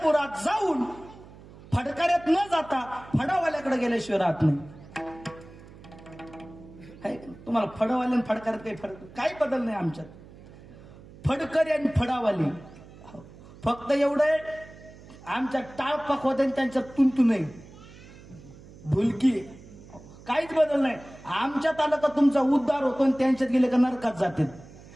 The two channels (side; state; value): right; noise; hum, 20 dB below the sound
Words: जाऊन फडकाऱ्यात न जाता फडावाल्याकडे गेल्याशिवाय राहत नाही. तुम्हाला फडवाले आणि फडकाऱ्यात काही फरक, काही बदल नाही आमच्यात. फडकरी आणि फडावाली फक्त एवढं, आमच्या टाळपाक होते त्यांच्यात तुंतू नाही, भुलकी, काहीच बदल नाही. आमच्यात आलं का तुमचा उद्धार होतो आणि त्यांच्यात गेले का नरकात जाते,